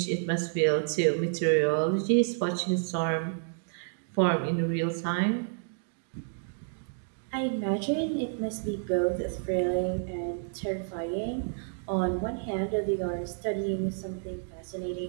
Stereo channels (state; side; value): silent; left; digital silence